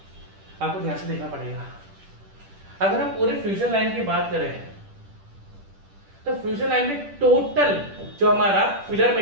आपको ध्यान से देखना पड़ेगा। अगर हम पूरे फ्यूजन लाइन की बात करें तो फ्यूजन लाइन में टोटल जो हमारा फिलर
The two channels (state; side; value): late; left; 10 ms